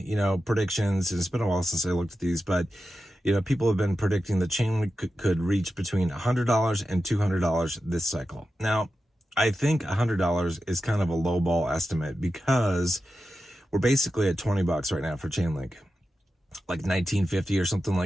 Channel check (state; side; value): normal; both; correlation 0.91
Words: predictions, and it's been a while since I looked at these, but people have been predicting that Chainlink could reach between $100 and $200 this cycle. Now, I think $100 is kind of a lowball estimate, because we're basically at 20 bucks right now for Chainlink, like 1950 or something